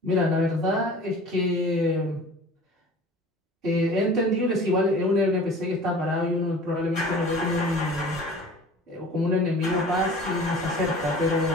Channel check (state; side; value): normal; both; correlation 0.43